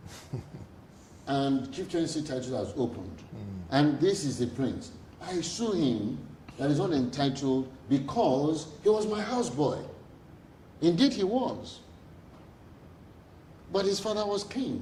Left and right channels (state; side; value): identical; both; correlation 1.00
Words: And Chief Chancellor title has opened. And this is the prince. I sue him that is not entitled because he was my houseboy. Indeed he was. But his father was